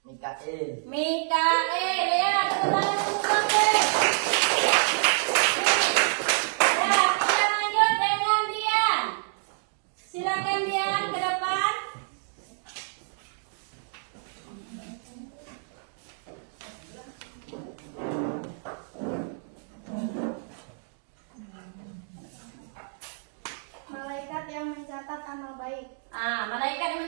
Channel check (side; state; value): left; silent; digital silence